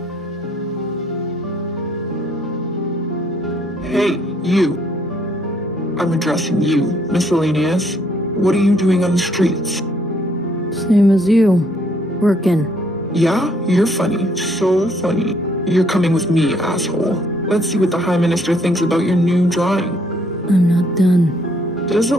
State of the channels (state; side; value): normal; both; correlation 0.67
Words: Hey, you. I'm addressing you, Miscellaneous. What are you doing on the streets? Same as you. Working. Yeah? You're funny. So funny. You're coming with me, asshole. Let's see what the High Minister thinks about your new drawing. I'm not done. Does it